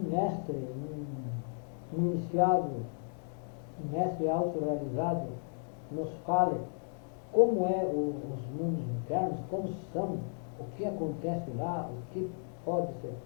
mestre, um iniciado, um mestre autorrealizado nos fale como os mundos internos, como são, o que acontece lá, o que pode ser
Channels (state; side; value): silent; right; 55 dB below the other